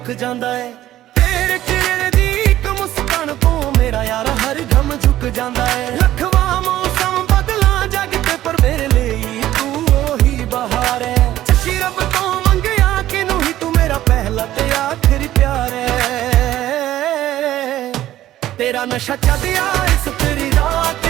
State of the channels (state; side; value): quieter; left; 13.7 dB